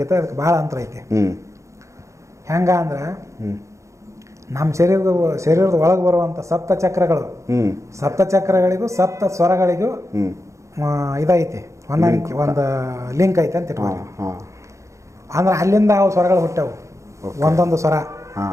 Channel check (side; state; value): left; late; 0.15 ms